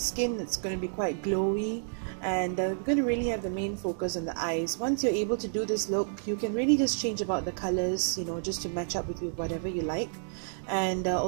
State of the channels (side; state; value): left; silent; digital silence